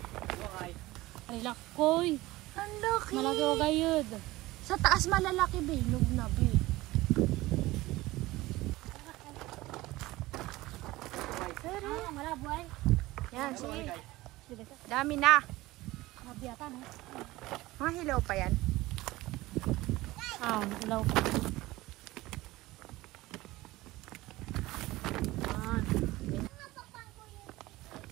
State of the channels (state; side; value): quieter; left; 18.7 dB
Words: Ay, lakoy. Ang laki. Malaki o gayod. Sa taas malalaki, be. Hinog na, be. Malabo ay. Yan, sige. Sige ka. Dami na. Mabiyatan eh. Mga hilaw pa yan. Ilaw. Yan.